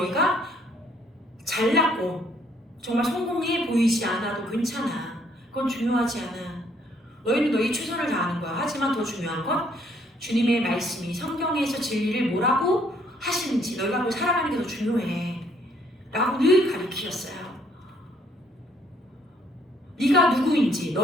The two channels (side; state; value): both; normal; correlation 0.66